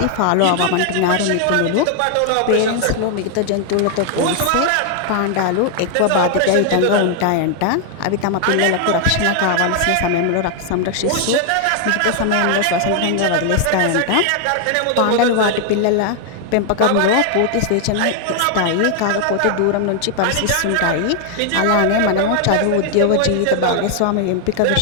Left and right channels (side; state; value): both; different; correlation 0.00